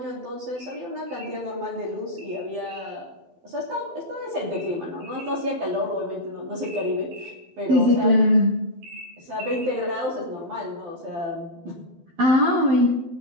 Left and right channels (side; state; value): left; late; 12 ms